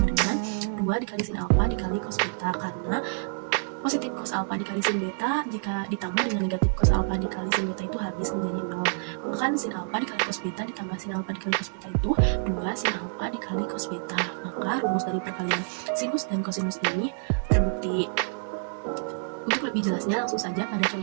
dengan 2 dikali sin alfa dikali cos beta, karena positif cos alfa dikali sin beta jika ditambah dengan negatif cos alfa dikali sin beta itu habis menjadi 0. Maka kan sin alfa dikali cos beta ditambah sin alfa dikali cos beta itu 2 sin alfa dikali cos beta. Maka rumus dari perkalian sinus dan kosinus ini terbukti. Untuk lebih jelasnya langsung saja pada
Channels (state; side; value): silent; left; digital silence